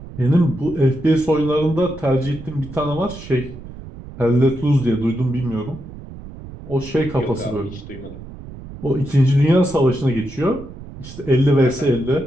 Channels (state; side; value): noise; right; rumble, 14 dB below the sound